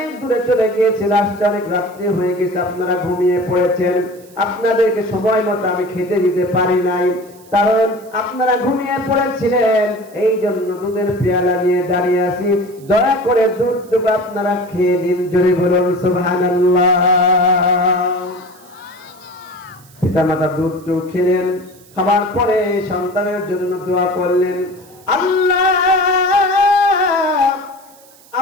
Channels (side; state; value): right; noise; hiss, 26 dB below the sound